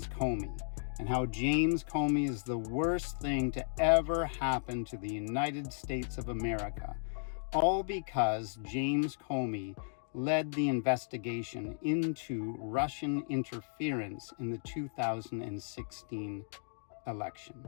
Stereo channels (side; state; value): right; silent; digital silence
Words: Comey and how James Comey is the worst thing to ever happen to the United States of America, all because James Comey led the investigation into Russian interference in the 2016 election,